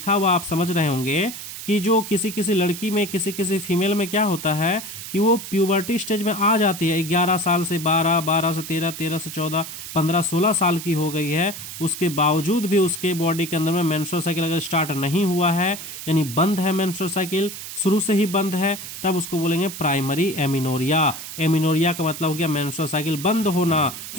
हुआ आप समझ रहे होंगे कि जो किसी लड़की में, किसी फीमेल में क्या होता है कि वो प्यूबर्टी स्टेज में आ जाती है, 11 साल से 12, 12 से 13, 13 से 14, 15, 16 साल की हो गई है, उसके बावजूद भी उसके बॉडी के अंदर में मेंस्ट्रुअल साइकिल अगर स्टार्ट नहीं हुआ है, यानी बंद है, मेंस्ट्रुअल साइकिल शुरू से ही बंद है, तब उसको बोलेंगे प्राइमरी एमिनोरिया। एमिनोरिया का मतलब हो गया मेंस्ट्रुअल साइकिल बंद होना,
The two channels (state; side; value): noise; right; hiss, 10 dB below the sound